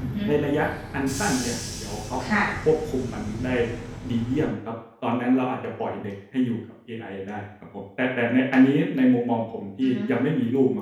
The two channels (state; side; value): identical; both; correlation 1.00